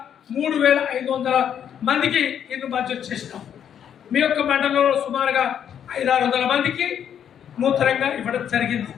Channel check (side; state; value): right; quieter; 9.0 dB